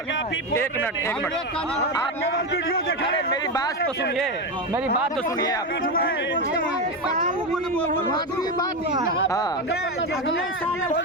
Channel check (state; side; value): normal; both; correlation 0.13